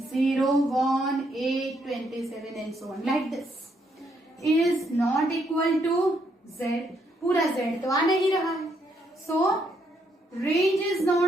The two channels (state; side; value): normal; both; correlation 0.74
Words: 1 8 27 and so on, like this. Is not equal to z. पूरा z तो आ नहीं रहा है, so range is